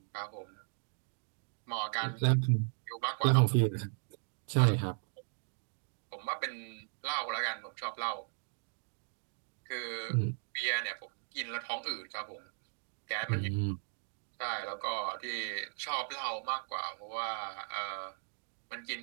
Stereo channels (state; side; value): silent; left; 53 dB below the other